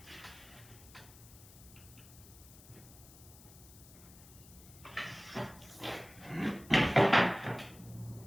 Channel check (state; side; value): noise; left; hiss, 20 dB below the sound